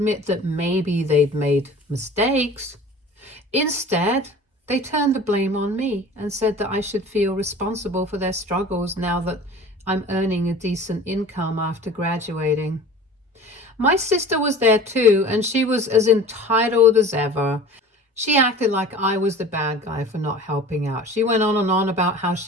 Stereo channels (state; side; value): normal; both; correlation 0.41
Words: that maybe they'd made mistakes. Instead, they turned the blame on me and said that I should feel responsible for their struggles now that I'm earning a decent income after graduating. My sister was there too, and she was as entitled as ever. She acted like I was the bad guy for not helping out. She went on and on about how